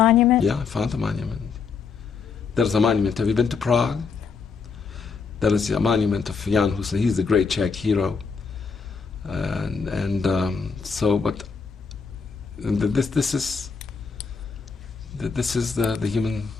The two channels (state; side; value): quieter; right; 5.3 dB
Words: Yeah, I found the monument. There's a monument. Have you been to Prague? There is a monument of Jan Hus. He's the great Czech hero. This is the human